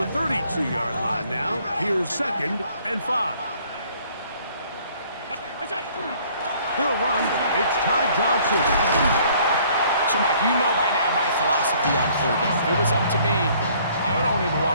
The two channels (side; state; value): both; inverted; correlation -0.59